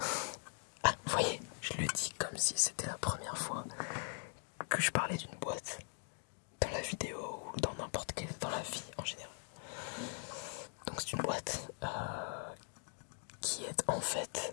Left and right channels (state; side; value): silent; right; 50 dB below the other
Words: Ah, vous voyez, je le dis comme si c'était la première fois que je parlais d'une boîte dans la vidéo ou dans n'importe quelle, dans la vie en général. Donc c'est une boîte qui est en